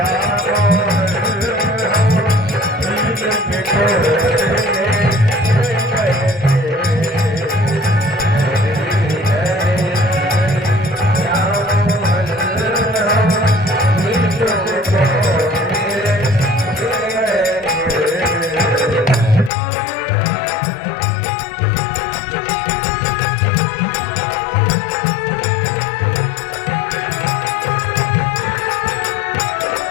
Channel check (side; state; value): right; drops out; at 19.5 s